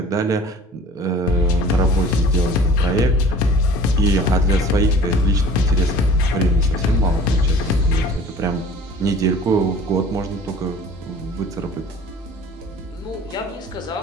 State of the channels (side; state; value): both; normal; correlation 0.47